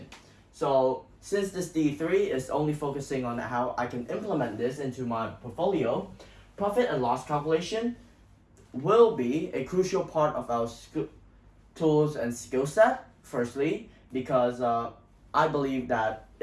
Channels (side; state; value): both; identical; correlation 1.00